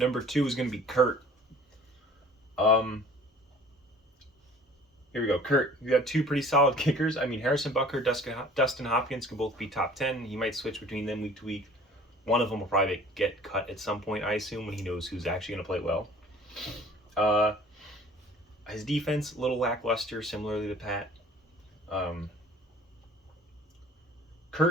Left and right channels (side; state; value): both; normal; correlation 0.49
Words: 2 is going to be Kurt. Here we go. Kurt, you got 2 pretty solid kickers. I mean, Harrison Butker, Dustin Hopkins can both be top 10. He might switch between them week to week. One of them will probably get cut at some point, I assume, when he knows who's actually going to play well. His defense, a little lackluster, similarly to Pat.